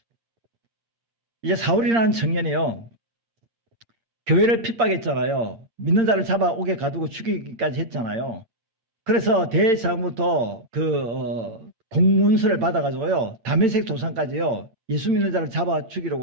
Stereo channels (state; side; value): late; left; 8.7 ms